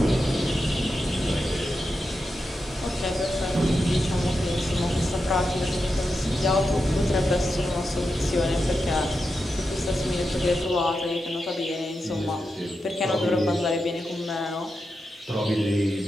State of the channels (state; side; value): normal; both; correlation 0.88